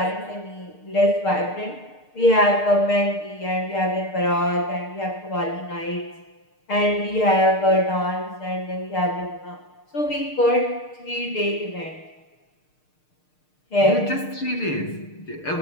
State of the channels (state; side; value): late; right; 6.6 ms